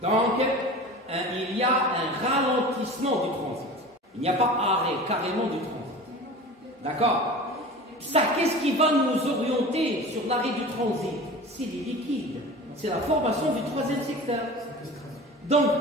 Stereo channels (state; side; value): normal; both; correlation 0.36